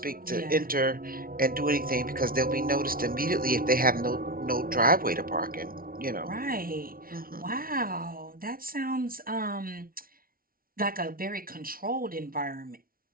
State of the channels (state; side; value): late; left; 0.43 ms